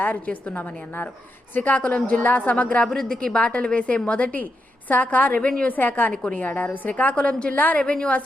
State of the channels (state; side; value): normal; both; correlation 0.84